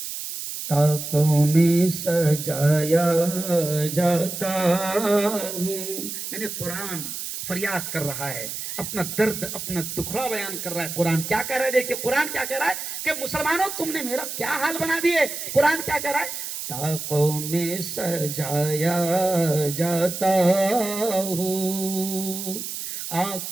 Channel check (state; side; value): noise; right; hiss, 6 dB below the sound